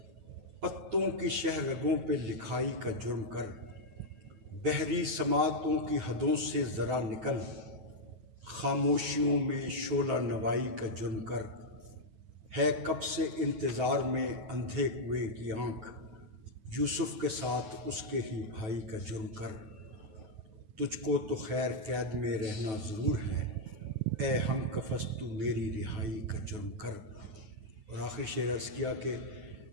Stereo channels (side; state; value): left; late; 9.3 ms